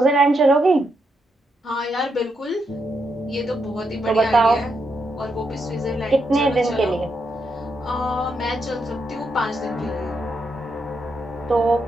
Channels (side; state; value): both; normal; correlation 0.81